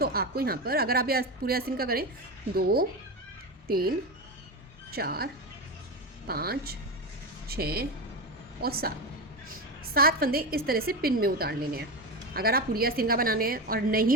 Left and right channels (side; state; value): both; normal; correlation 0.18